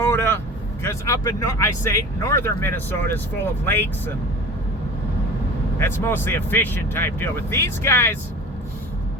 because up in I say northern Minnesota is full of lakes, and that's mostly a fishing type deal. But these guys,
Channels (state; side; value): normal; both; correlation 0.37